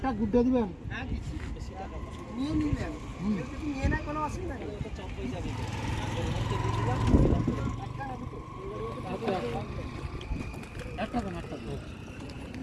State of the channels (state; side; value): identical; both; correlation 1.00